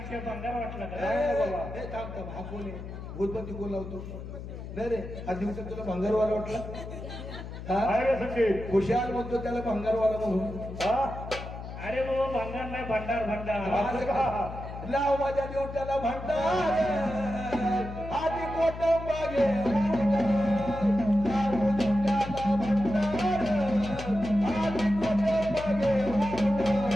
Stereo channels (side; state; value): left; noise; hum, 10 dB below the sound